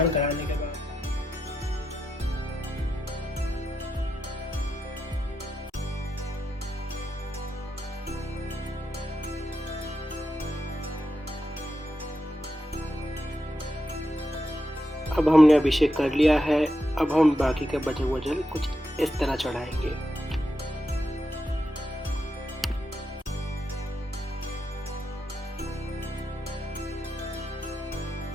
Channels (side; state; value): both; normal; correlation 0.86